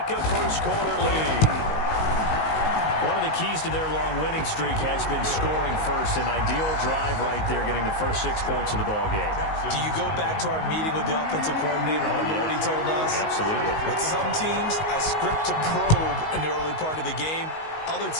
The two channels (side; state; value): right; late; 19 ms